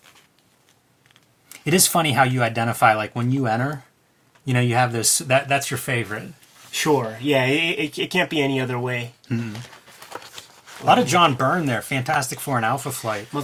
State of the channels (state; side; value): identical; both; correlation 1.00